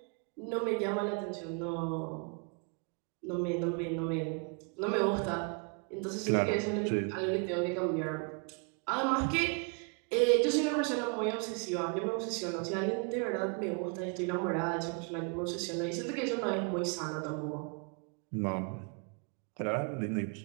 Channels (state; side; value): quieter; left; 37.2 dB